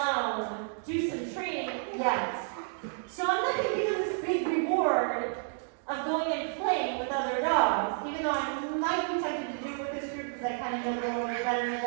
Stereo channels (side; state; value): left; silent; digital silence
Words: do some training yet. So I'm not going to give them this big reward of going and playing with other dogs, even though I might be tempted to do it with this group because I kind of know them a little bit better than